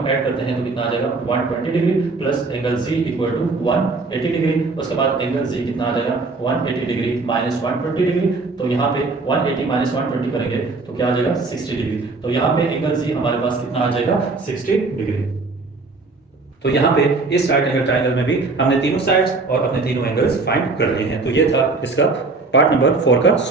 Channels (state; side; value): quieter; left; 3.7 dB